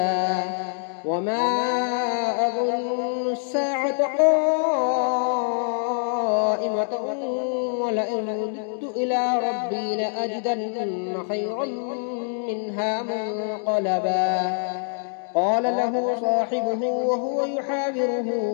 وما أظن الساعة قائمة ولئن رددت إلى ربي لأجدن خيرا منها منقلبا قال له صاحبه وهو يحاوره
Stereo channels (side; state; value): right; silent; 62 dB below the other